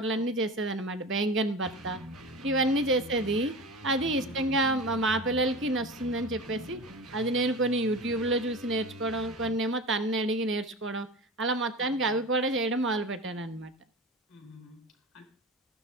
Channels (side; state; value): both; normal; correlation 0.31